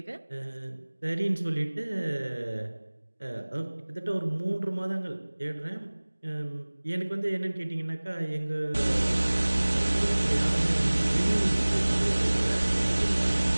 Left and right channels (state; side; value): inverted; both; correlation -1.00